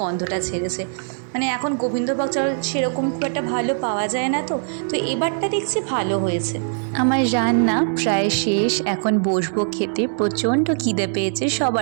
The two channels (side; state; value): left; silent; digital silence